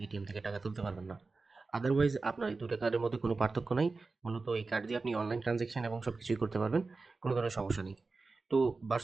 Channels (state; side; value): quieter; left; 3.9 dB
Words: এটিএম থেকে টাকা তুলতে পারবেন না। আদারওয়াইজ আপনার এই দুটো কার্ডের মধ্যে কোনো পার্থক্য নাই। মূলত এই কার্ড দিয়ে আপনি অনলাইন ট্রানজ্যাকশন এবং সব কিছুই করতে পারবেন, কোনো ধরনের সমস্যা নেই। তো